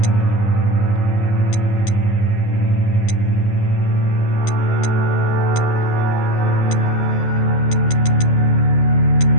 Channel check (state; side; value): late; right; 11 ms